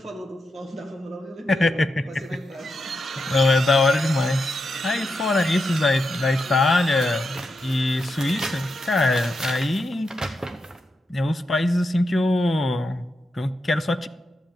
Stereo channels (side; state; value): both; normal; correlation 0.86